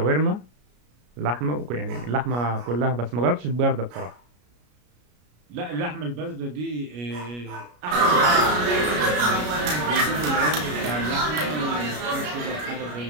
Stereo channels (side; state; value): left; late; 33 ms